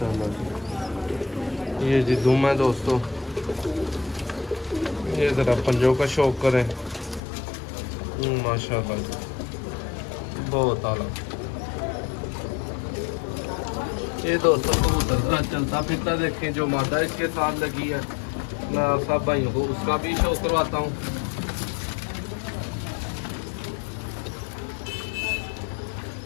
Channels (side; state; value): right; drops out; at 7.2 s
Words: जी। ये जी दुम है दोस्तों। ये ज़रा पंजों का शौक करें माशाल्लाह बहुत आला। ये दोस्तों कबूतर ज़रा चलता फिरता देखें। जो मादा इसके साथ लगी है मैं सब भाइयों को उसका भी शौक करवाता हूँ।